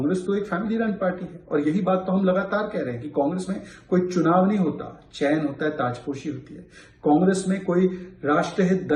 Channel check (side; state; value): both; identical; correlation 1.00